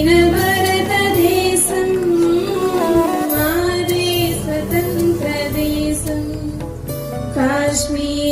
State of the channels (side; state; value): both; identical; correlation 1.00